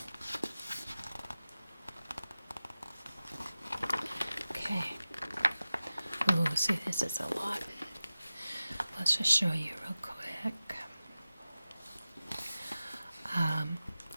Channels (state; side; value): inverted; both; correlation -0.94